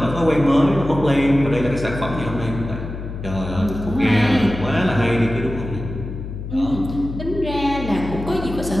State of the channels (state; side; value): noise; left; hum, 8 dB below the sound